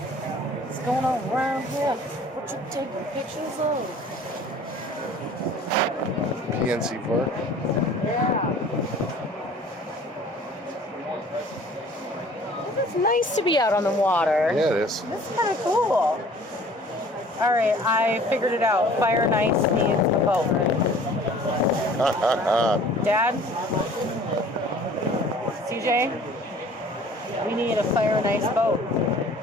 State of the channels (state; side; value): normal; both; correlation 0.49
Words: What's going on around here? What you taking pictures of? PNC Park. Yeah. It's nice to be out on the water. Yeah, it is. This is kind of cool. All right, I figured it out. Fire and Ice needs a boat. Dad? CJ? We need a Fire and Ice boat.